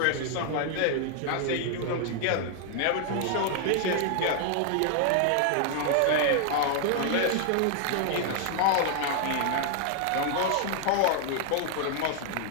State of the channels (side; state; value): both; different; correlation 0.00